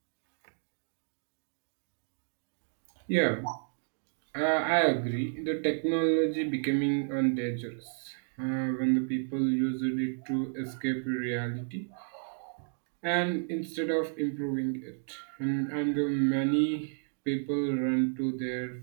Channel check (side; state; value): left; silent; digital silence